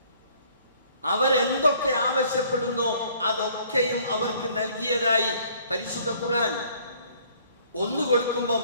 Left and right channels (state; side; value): inverted; both; correlation -0.59